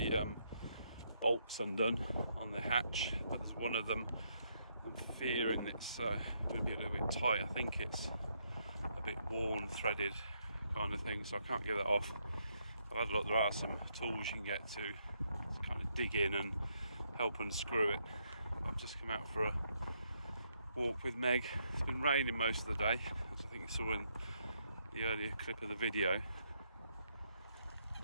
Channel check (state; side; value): inverted; both; correlation -0.76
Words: bolts undone on the hatch, but there's one of them I'm fearing it's going to be a little bit tight. I think it's a bit worn, threaded kind of thing, so I can't get that off. I've had a look, there are some tools you can get to kind of dig in and help unscrew it. I've just come out for a walk with Meg. It's been raining most of the day, as I think you saw in the earlier clip of the video.